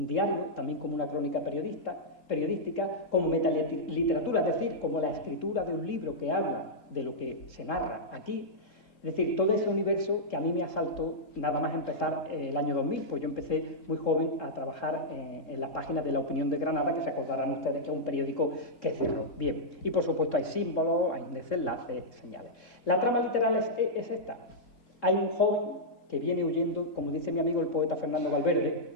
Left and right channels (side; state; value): right; late; 3.5 ms